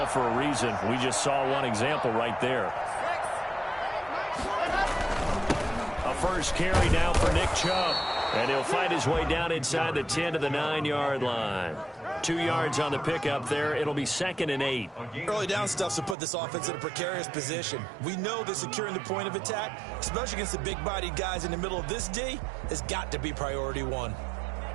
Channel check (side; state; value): left; drops out; at 16.2 s